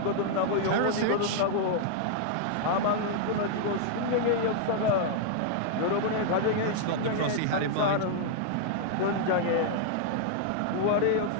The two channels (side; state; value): both; different; correlation -0.01